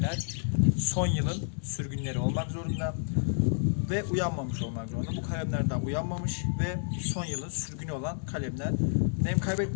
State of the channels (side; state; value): right; silent; digital silence